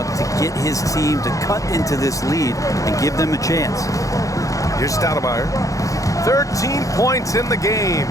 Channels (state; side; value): late; right; 0.16 ms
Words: to get his team to cut into this lead and give them a chance. Here's Stoudemire. 13 points in the game.